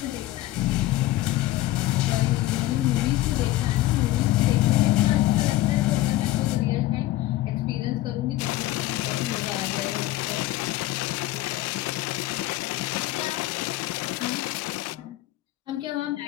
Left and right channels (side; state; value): right; quieter; 16.0 dB